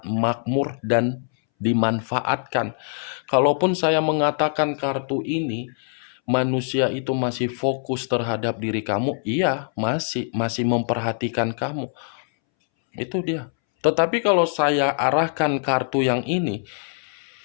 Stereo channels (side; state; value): right; silent; 63 dB below the other